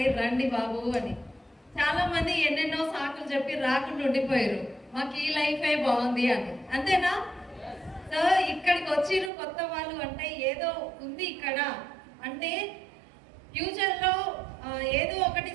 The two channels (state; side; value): drops out; left; at 9.3 s